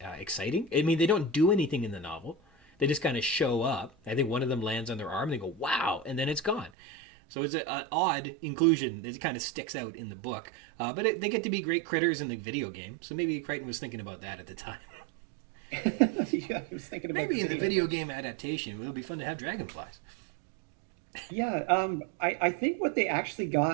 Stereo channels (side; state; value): left; drops out; at 6.7 s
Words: exciting. I mean, they don't do anything in the novel. They just kind of show up. I think one of them lands on their arm and they go, wow, and then it's gone. So it's an odd inclusion that kind of sticks out in the book. But they get to be great critters in the video game. So maybe Crichton was thinking about that at the time. Yeah, I was thinking about maybe in the video game adaptation, it'll be fun to have dragonflies. Yeah, I think what they actually